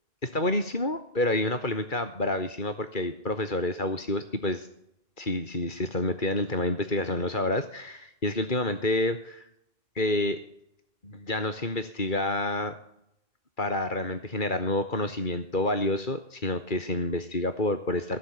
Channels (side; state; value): right; late; 2.3 ms